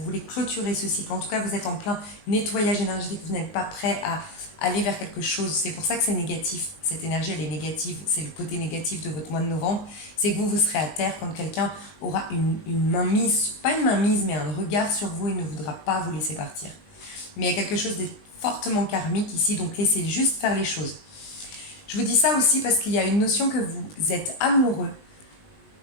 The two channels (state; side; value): late; right; 19 ms